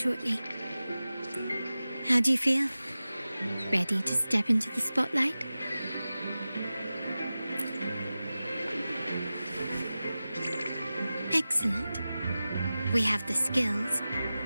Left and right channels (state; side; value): inverted; both; correlation -0.95